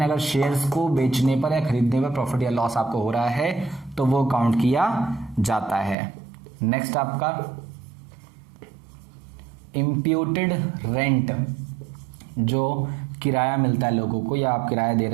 अगर शेयर्स को बेचने पर या खरीदने पर प्रॉफिट या लॉस आपको हो रहा है तो वो काउंट किया जाता है। नेक्स्ट आपका इम्प्यूटेड रेंट, जो किराया मिलता है लोगों को या आप किराया दे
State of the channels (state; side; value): drops out; left; at 6.0 s